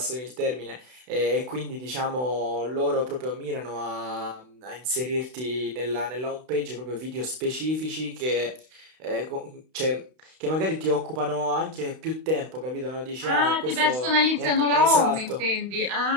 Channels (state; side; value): late; left; 32 ms